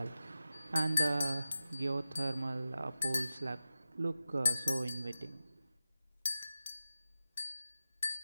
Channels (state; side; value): inverted; both; correlation -0.92